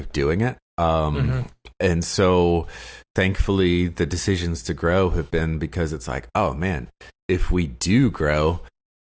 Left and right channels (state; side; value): identical; both; correlation 1.00